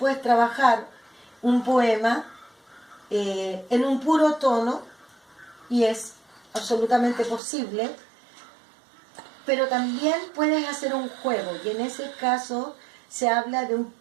trabajar un poema en un puro tono y es absolutamente posible, pero también puedes hacer un juego y en ese caso se habla de un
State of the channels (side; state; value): left; drops out; at 7.4 s